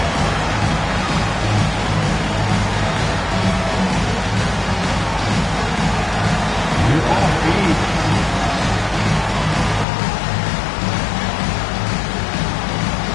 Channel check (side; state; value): right; drops out; at 9.9 s